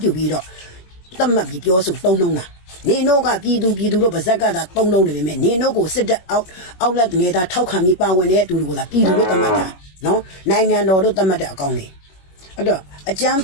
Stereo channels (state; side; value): late; right; 21 ms